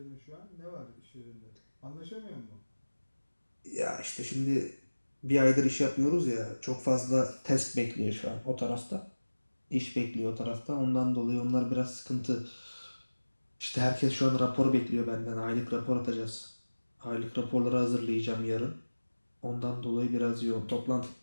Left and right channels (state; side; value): inverted; both; correlation -1.00